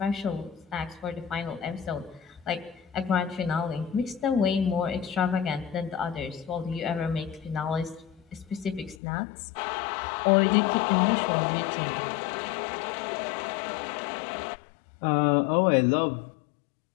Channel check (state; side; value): drops out; right; at 9.0 s